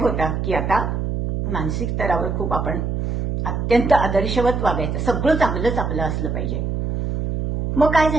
की आता मानसिक स्तरावर खूप आपण अत्यंत आदर्शवत वागायचं, सगळं चांगलंच आपलं असलं पाहिजे. मग काय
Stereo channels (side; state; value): right; noise; hum, 2 dB below the sound